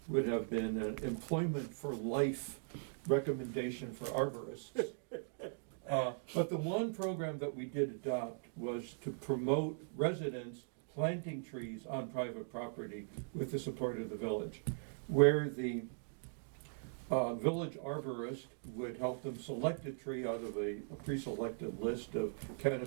would have been an employment for life recommendation for arborists. But the one program that we did adopt was to promote residents planting trees on private property with the support of the village, where the village arborist would help them select a tree out of a pre-selected list of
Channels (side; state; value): left; silent; digital silence